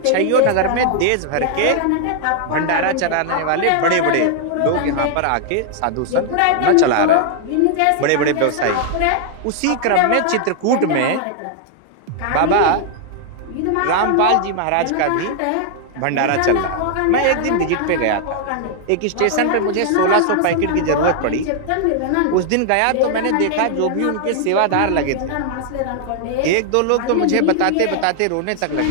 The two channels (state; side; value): different; both; correlation 0.00